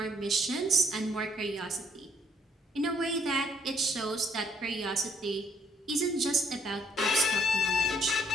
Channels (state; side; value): normal; both; correlation 0.68